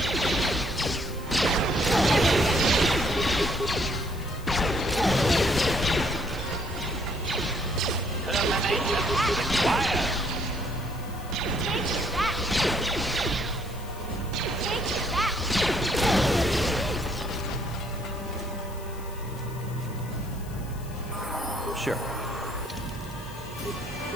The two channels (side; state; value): left; noise; hiss, 20 dB below the sound